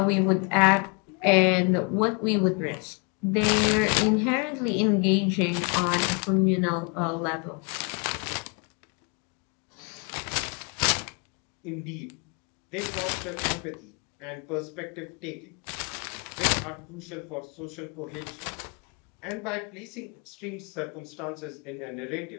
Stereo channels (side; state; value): right; quieter; 34.5 dB